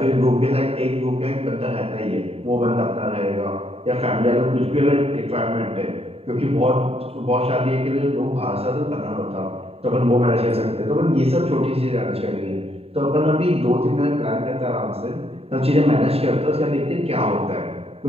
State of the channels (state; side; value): late; left; 0.29 ms